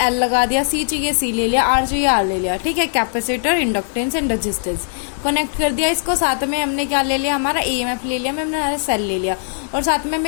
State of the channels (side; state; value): right; silent; digital silence